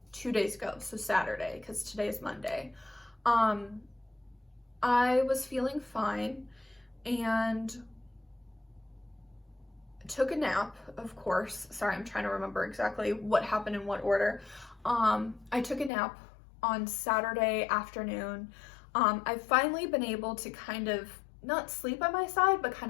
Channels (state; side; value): drops out; right; at 15.9 s